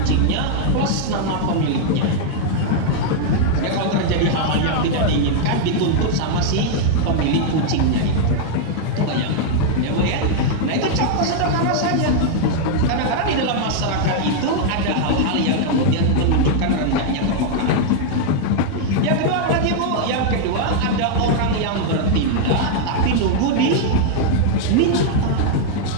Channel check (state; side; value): different; both; correlation -0.01